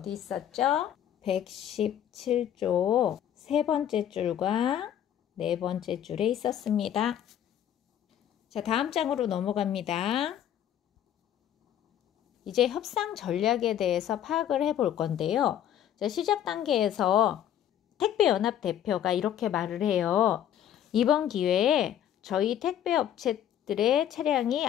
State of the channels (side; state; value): right; quieter; 10.5 dB